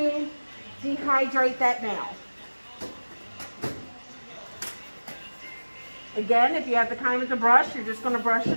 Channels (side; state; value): both; inverted; correlation -1.00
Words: dehydrate that nail. Again, if you have the time with the brush, you're just going to brush it